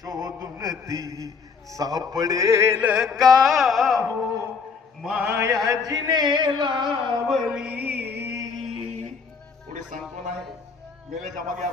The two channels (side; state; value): right; quieter; 5.4 dB